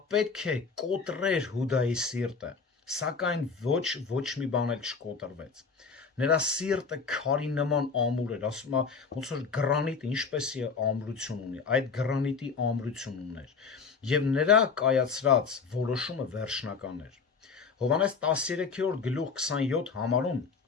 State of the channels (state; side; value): quieter; right; 5.2 dB